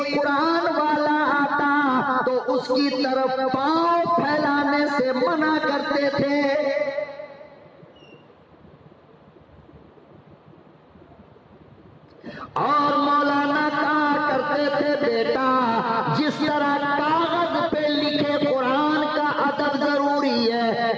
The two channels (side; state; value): both; identical; correlation 1.00